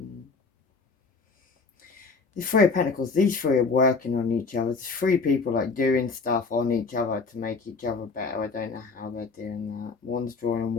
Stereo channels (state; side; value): quieter; right; 4.5 dB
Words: the Three of Pentacles. These three are working on each other. There's three people like doing stuff on each other to make each other better. I don't know how they're doing that. One's drawing on